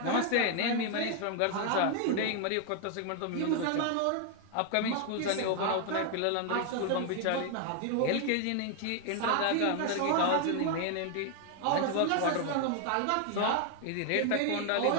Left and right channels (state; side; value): different; both; correlation 0.00